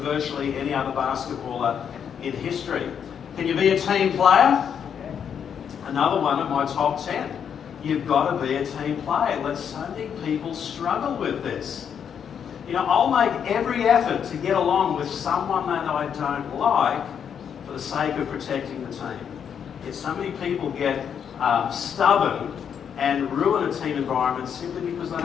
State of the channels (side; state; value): right; quieter; 7.9 dB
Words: virtually any other basketballer in history. Can you be a team player? Another one of my top 10. You've got to be a team player. So many people struggle with this. You know, I'll make every effort to get along with someone that I don't like for the sake of protecting the team. Yet so many people get stubborn and ruin a team environment simply because they